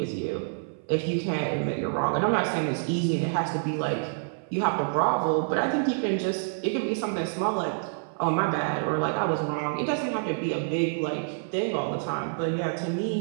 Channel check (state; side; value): silent; left; 58 dB below the other